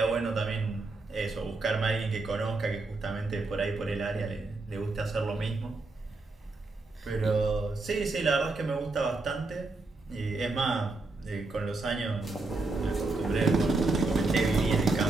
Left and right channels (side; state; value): left; quieter; 3.4 dB